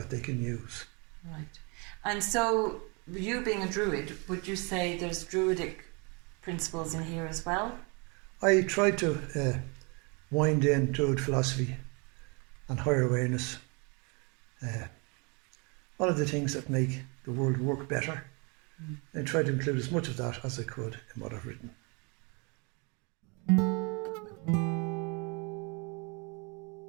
they can use. Right. And so, you being a Druid, would you say there's Druidic principles in here as well? I tried to wind in Druid philosophy and higher awareness. All of the things that make the world work better. I tried to include as much of that as I could in what I've written.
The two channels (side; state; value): left; quieter; 31.8 dB